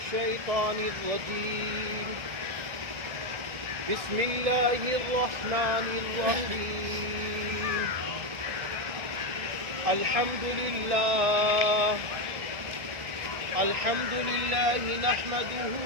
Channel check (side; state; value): left; late; 1.7 ms